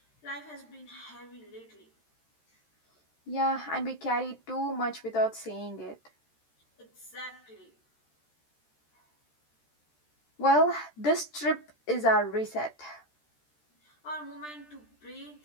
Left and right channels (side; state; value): right; late; 13 ms